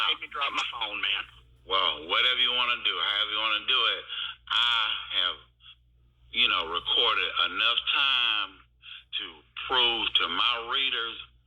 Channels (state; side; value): identical; both; correlation 1.00